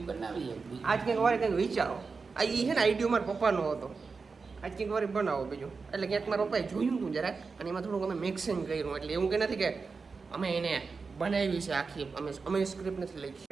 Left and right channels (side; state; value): left; quieter; 4.7 dB